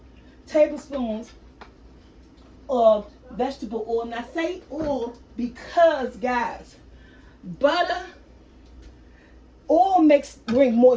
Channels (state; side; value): identical; both; correlation 1.00